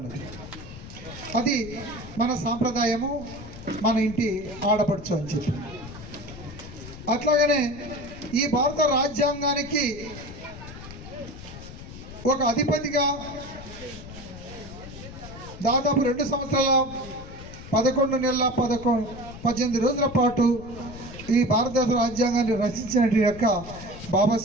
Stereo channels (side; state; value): left; noise; rumble, 14 dB below the sound